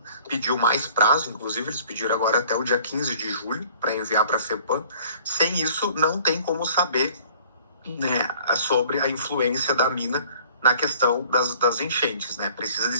pediu mais prazo, inclusive eles pediram agora até o dia 15 de julho para enviar para a FEPAM, sem isso não tem como saber, né, sobre a influência da mina na questão das enchentes, né? Precisa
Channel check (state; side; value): inverted; both; correlation -0.53